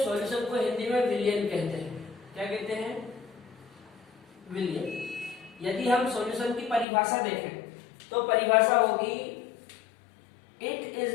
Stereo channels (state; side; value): drops out; right; at 6.9 s